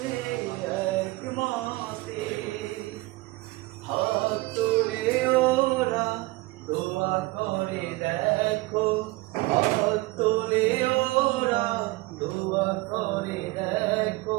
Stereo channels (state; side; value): quieter; left; 21.3 dB